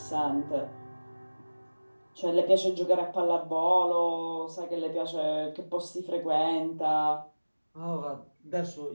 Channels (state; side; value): inverted; both; correlation -1.00